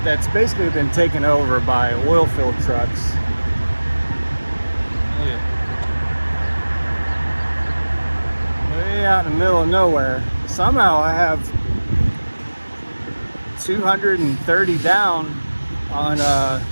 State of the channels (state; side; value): inverted; both; correlation -1.00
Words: that's basically been taken over by oil filled trucks. Look at it. Way out in the middle of nowhere. Somehow I have 230 down on